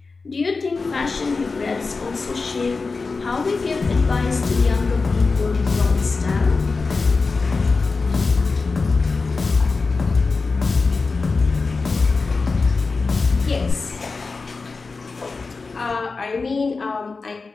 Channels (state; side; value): quieter; right; 4.2 dB